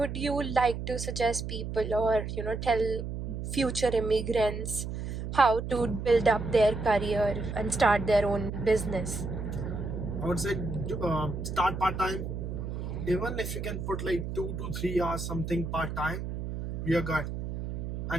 you like to suggest people, or tell future immigrants how to build up their career and start their own business? I would say start part time. Even if you can put like 2 to 3 hours something part time, you're good.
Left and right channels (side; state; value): right; noise; hum, 5 dB below the sound